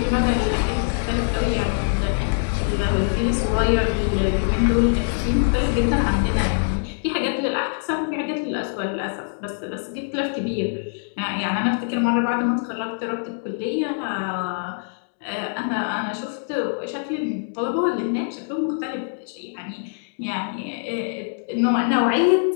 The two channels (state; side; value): silent; right; digital silence